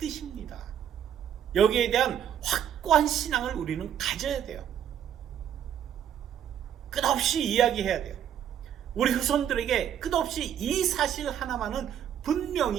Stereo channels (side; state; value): left; quieter; 9.6 dB